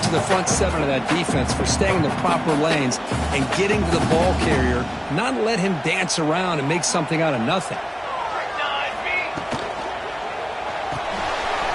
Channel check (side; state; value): both; identical; correlation 1.00